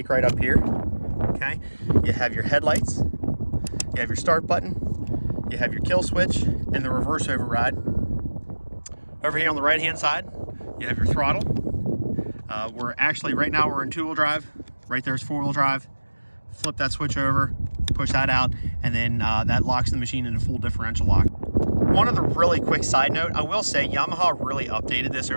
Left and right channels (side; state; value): both; inverted; correlation -1.00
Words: right up here, okay? You have your headlights, you have your start button, you have your kill switch, and the reverse override. Over here on the right-hand side, you have your throttle. Right now we're in two-wheel drive. Right there's four-wheel drive. Flip that switch over, push that out, and then that locks the machine into full differential lock. One other really quick side note, I will say Yamaha really updated this